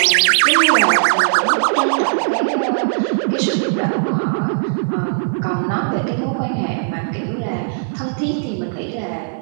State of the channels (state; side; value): silent; left; digital silence